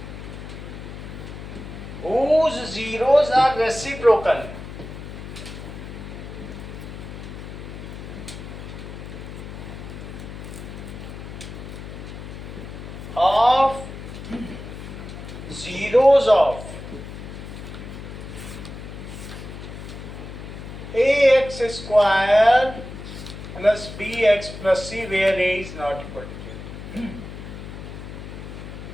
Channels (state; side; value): noise; left; hum, 10 dB below the sound